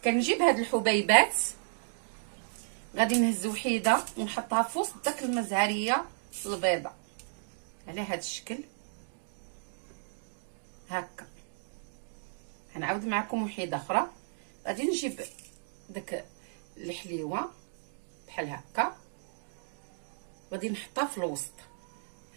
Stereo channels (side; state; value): left; silent; digital silence